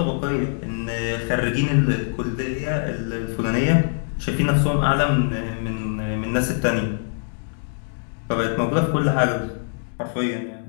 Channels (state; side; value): silent; right; digital silence